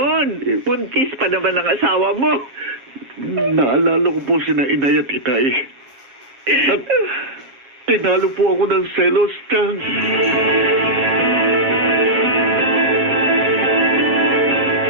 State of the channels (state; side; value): late; left; 7.4 ms